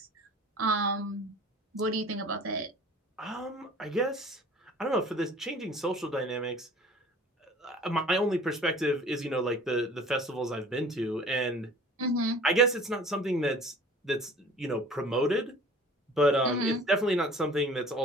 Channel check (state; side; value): normal; both; correlation 0.47